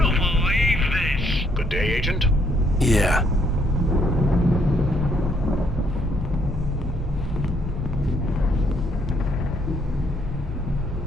believe this. Good day, Agent. Yeah.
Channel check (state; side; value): normal; both; correlation 0.69